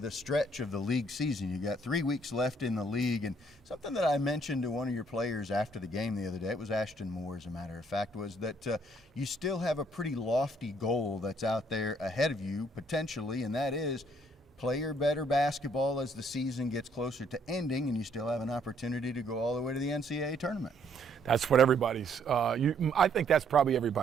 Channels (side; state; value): both; normal; correlation 0.67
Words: stretch of the league season. You got 3 weeks left in the league, and something that I mentioned to one of your players after the game the other day, it was Ashton Moore, as a matter of fact, was that you still have a pretty lofty goal that's out there ahead of you, potentially, and that is play your better basketball as the season gets closer to ending, and you still have an opportunity to go all the way to the NCAA tournament. That's what everybody's I think that's probably